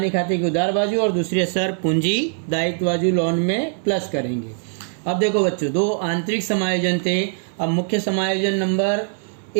खाते की उधार बाजू और दूसरी असर पूंजी दायित्व बाजू लोन में प्लस करेंगे। अब देखो बच्चों, दो आंतरिक समायोजन थे। अब मुख्य समायोजन नंबर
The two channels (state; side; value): silent; left; 59 dB below the other